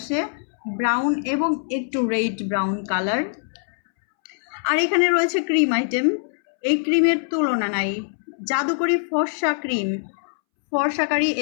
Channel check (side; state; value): right; silent; 63 dB below the other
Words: ব্রাউন এবং একটু রেড ব্রাউন কালার। আর এখানে রয়েছে ক্রিম আইটেম। এই ক্রিমের তুলনা নাই, জাদুকরি ফর্সা ক্রিম। ফর্সাকারী